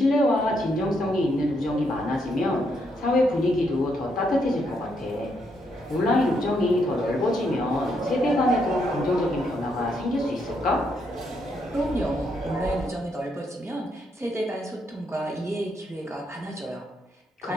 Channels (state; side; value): normal; both; correlation 0.77